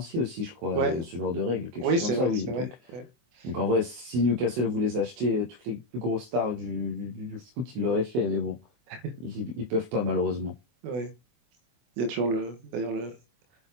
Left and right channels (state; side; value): late; left; 24 ms